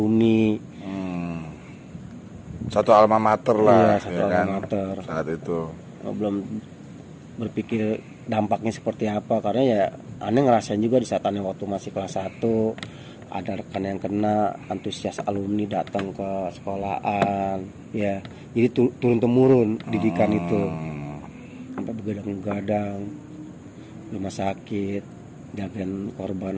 Satu alma mater lah, alma mater. Saat itu belum berpikir dampaknya seperti apa karena ya aneh ngerasain juga di saat aneh waktu masih kelas 1 ada rekan yang kena, antusias alumni datang ke sekolahan, ya. Jadi turun temurun didikan itu sampai begadang-begadang rumah sakit, jagain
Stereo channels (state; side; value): identical; both; correlation 1.00